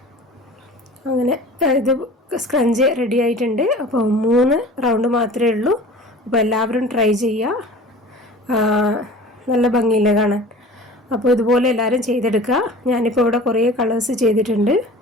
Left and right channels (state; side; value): normal; both; correlation 0.41